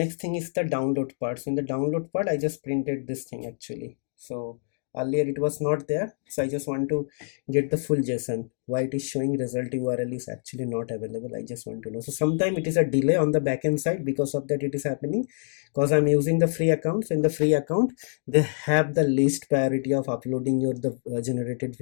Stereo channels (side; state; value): right; silent; digital silence